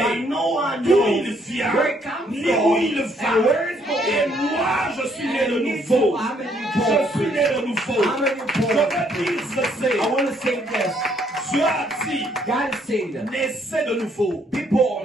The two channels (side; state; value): both; normal; correlation 0.69